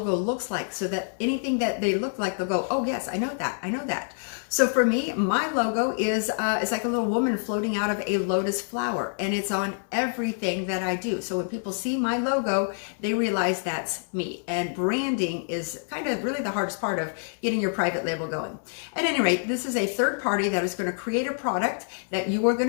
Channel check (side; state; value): right; silent; 60 dB below the other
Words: looks like so that anything that they look like, they'll go, oh yes, I know that, I know that. So for me, my logo is it's like a little woman floating out of a lotus flower, and it's on everything that I do. So when people see my logo, they realize that's me. And branding is kind of really the hardest part of getting your private label going. At any rate, this is a third party that is going to create a product that you are going